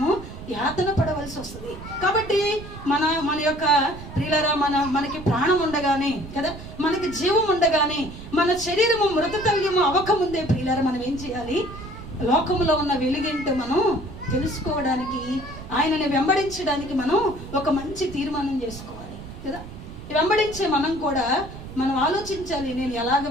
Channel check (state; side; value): noise; right; rumble, 13 dB below the sound